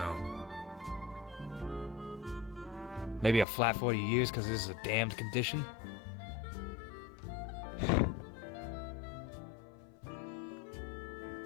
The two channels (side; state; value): right; drops out; at 3.5 s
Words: Maybe a flat 40 years because this is a damned condition?